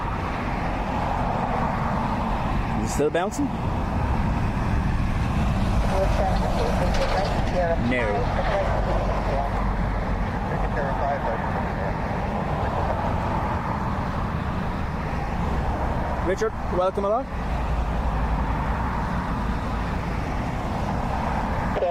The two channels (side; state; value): both; identical; correlation 1.00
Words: Still bouncing? No. Richard, welcome along.